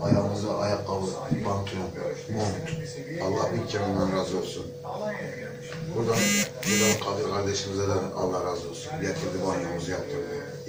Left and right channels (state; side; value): identical; both; correlation 1.00